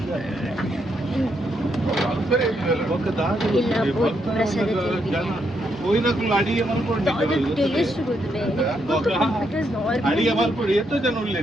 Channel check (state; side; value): normal; both; correlation 0.78